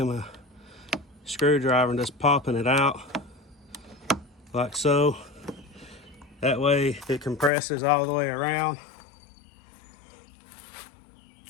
a screwdriver and just popping it out like so. That way it compresses all the way around.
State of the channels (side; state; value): right; drops out; at 7.5 s